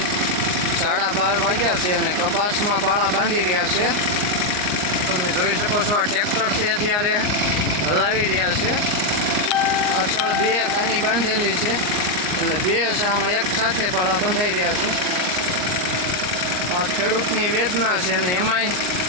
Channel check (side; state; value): left; late; 39 ms